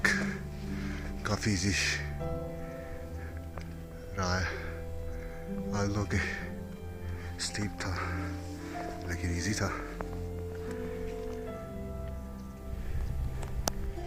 काफ़ी इजी रहा है, आल्दो के स्टीप था लेकिन इजी था।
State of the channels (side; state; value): both; identical; correlation 1.00